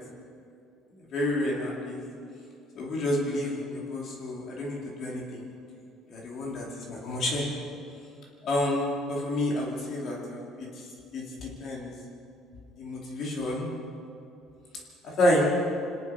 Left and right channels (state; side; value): normal; both; correlation 0.64